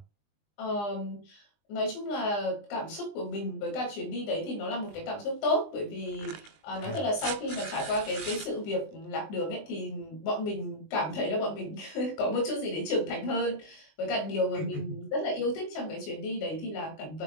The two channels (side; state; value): right; late; 20 ms